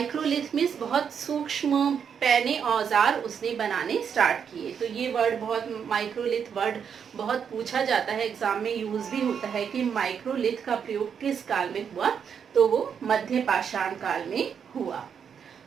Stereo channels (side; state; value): left; quieter; 7.3 dB